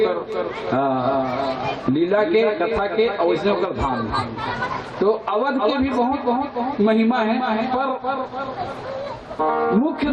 लीला के, कथा के और वैसने ओकर धाम। तो अवध के भी बहुत बहुत महिमा है, पर मुख्य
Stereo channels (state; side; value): identical; both; correlation 1.00